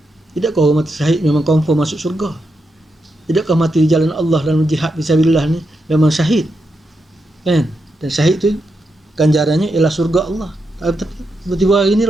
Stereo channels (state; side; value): normal; both; correlation 0.85